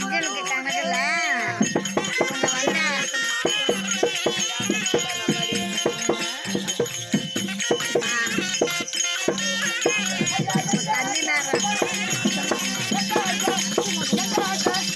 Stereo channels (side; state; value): both; identical; correlation 1.00